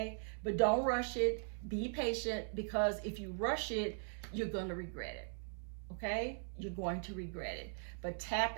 but don't rush it. Be patient, because if you rush it, you're going to regret it. Okay, you're going to regret it. But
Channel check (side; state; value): left; silent; 51 dB below the other